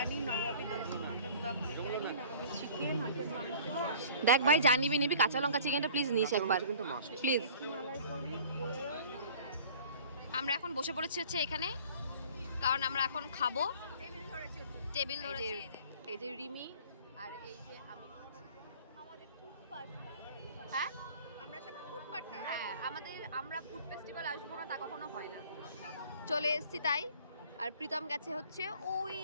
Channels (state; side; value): inverted; both; correlation -0.48